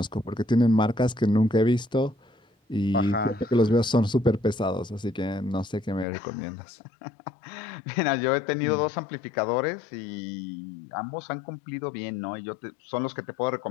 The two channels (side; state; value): right; drops out; at 6.1 s